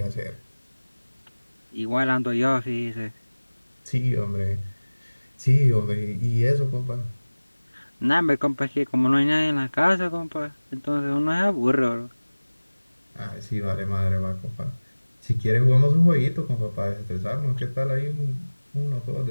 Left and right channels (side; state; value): both; inverted; correlation -1.00